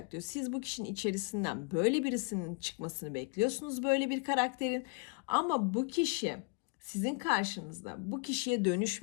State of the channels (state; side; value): quieter; right; 33.1 dB